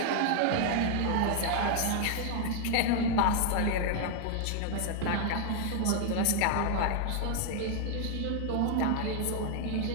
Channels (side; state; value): both; different; correlation 0.00